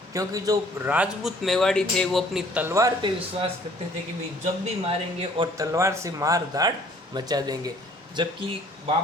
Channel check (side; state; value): both; normal; correlation 0.57